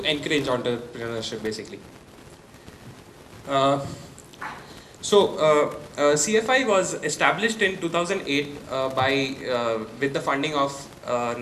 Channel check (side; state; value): both; identical; correlation 1.00